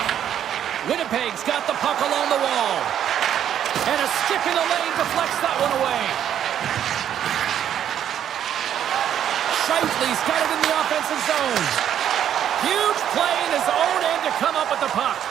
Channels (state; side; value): quieter; left; 9.9 dB